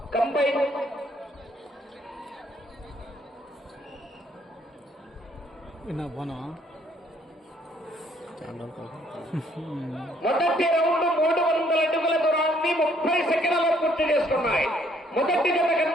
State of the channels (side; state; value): both; normal; correlation 0.65